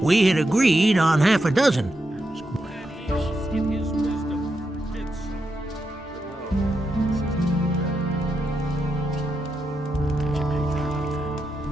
We had agreed on half a dozen.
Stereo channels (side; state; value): both; normal; correlation 0.85